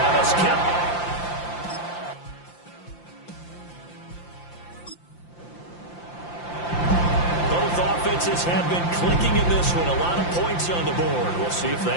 Kelce. Offenses have been clicking in this one. A lot of points on the board. We'll see if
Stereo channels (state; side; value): late; right; 5.8 ms